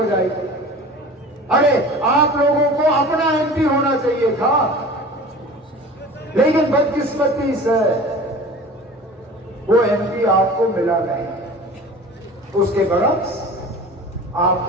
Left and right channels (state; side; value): normal; both; correlation 0.40